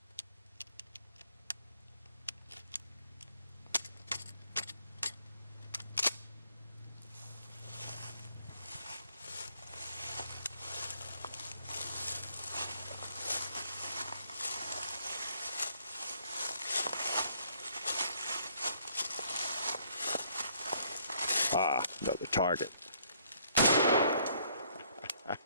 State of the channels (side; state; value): both; inverted; correlation -0.66